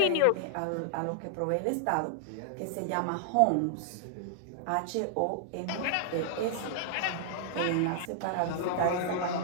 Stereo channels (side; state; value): both; different; correlation -0.01